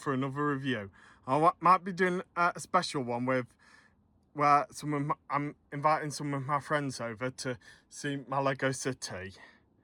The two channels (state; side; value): identical; both; correlation 1.00